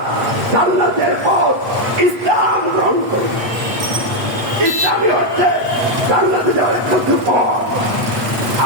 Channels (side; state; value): left; late; 8.3 ms